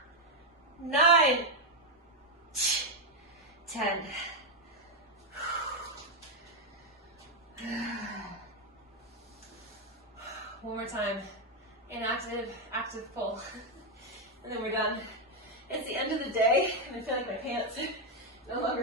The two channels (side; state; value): both; normal; correlation 0.03